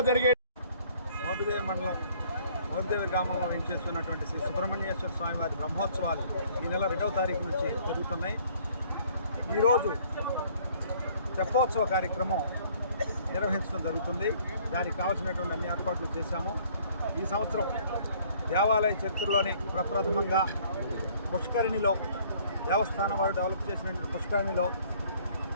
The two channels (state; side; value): inverted; both; correlation -0.58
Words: జరిగే మోపిదేవి మండలం మోపిదేవి గ్రామంలో వేంచేస్తున్నటువంటి శ్రీ సుబ్రహ్మణ్యేశ్వర స్వామి వారి బ్రహ్మోత్సవాలు ఈ నెల 2వ తారీఖు నుంచి జరుగుతున్నాయి. ఈరోజు తెప్పోత్సవ కార్యక్రమం నిర్వహించడం జరుగుతుంది. దానికి కావాల్సినటువంటి అన్ని ఏర్పాట్లు చేశాము. ఈ సంవత్సరం దేవాలయ చరిత్రలోనే ప్రప్రథమంగా పుష్కరిణిలో, దేవస్థానం వారు డెవలప్ చేసినటువంటి పుష్కరిణిలో